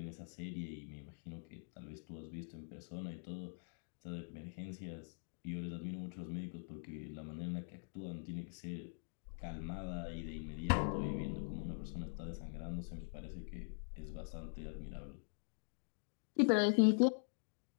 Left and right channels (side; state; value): right; silent; digital silence